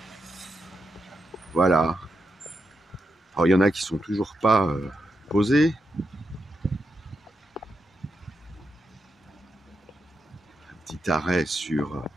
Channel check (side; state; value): both; normal; correlation 0.85